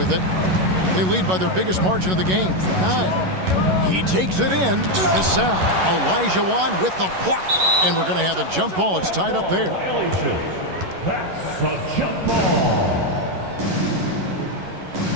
it. They lead by their biggest margin of the game, 9. He takes it in. Cassell. Olajuwon with the block. And we're going to have a jump ball. It's tied up there. That's a jump ball.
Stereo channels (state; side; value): late; left; 11 ms